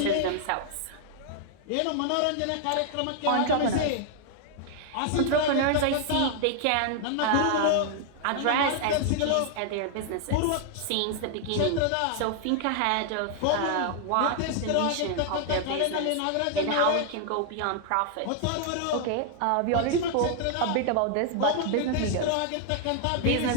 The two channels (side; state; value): both; different; correlation 0.00